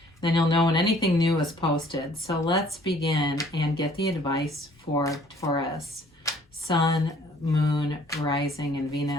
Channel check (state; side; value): normal; both; correlation 0.58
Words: Then you'll know when anything new is posted. So let's begin and get the advice for Taurus. Sun, Moon, Rising, and